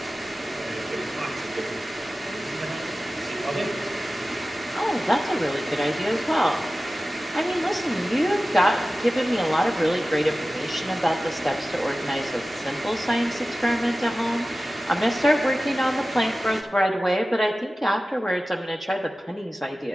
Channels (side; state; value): both; normal; correlation 0.95